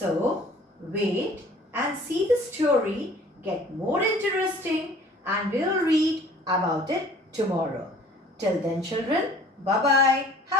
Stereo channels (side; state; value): both; normal; correlation 0.51